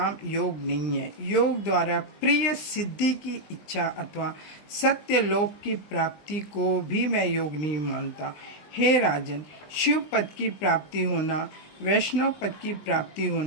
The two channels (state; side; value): late; right; 20 ms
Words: योग नहीं है। योग द्वारा प्रिय सिद्धि की इच्छा अथवा सत्य लोक की प्राप्ति को भी मैं योग नहीं मानता। हे राजन, शिव पद की प्राप्ति होना, वैष्णव पद की प्राप्ति